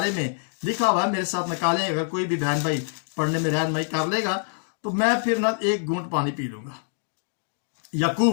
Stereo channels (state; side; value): silent; right; digital silence